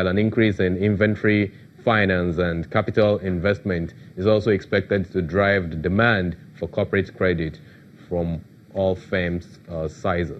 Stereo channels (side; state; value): both; identical; correlation 1.00